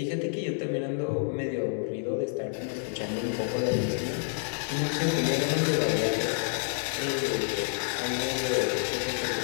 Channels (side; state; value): right; silent; digital silence